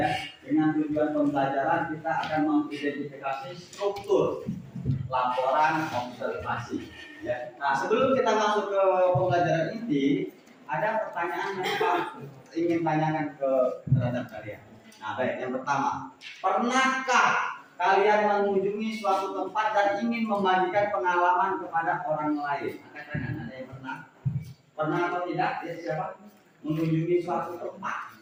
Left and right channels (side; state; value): both; identical; correlation 1.00